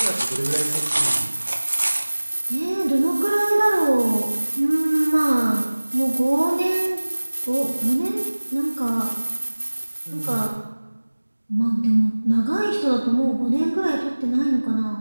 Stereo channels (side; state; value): both; inverted; correlation -1.00